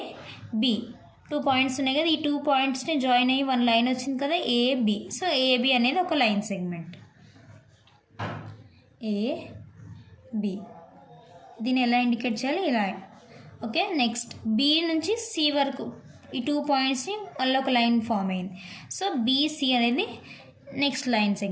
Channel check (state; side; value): identical; both; correlation 1.00